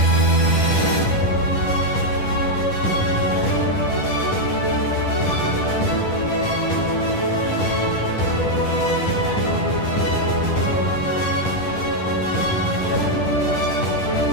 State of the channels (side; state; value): right; late; 10 ms